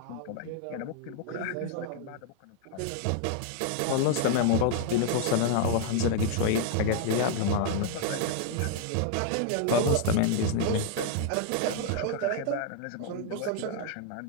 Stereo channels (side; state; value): both; different; correlation 0.00